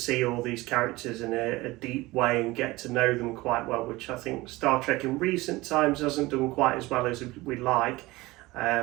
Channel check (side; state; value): left; quieter; 20.4 dB